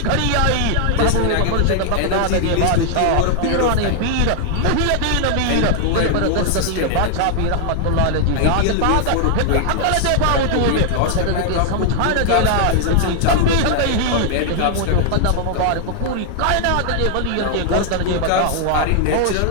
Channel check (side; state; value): both; different; correlation 0.00